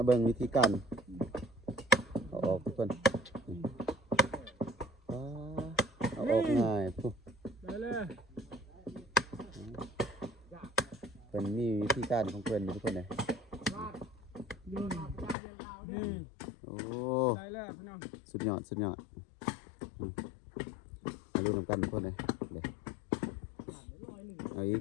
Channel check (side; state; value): right; drops out; at 15.4 s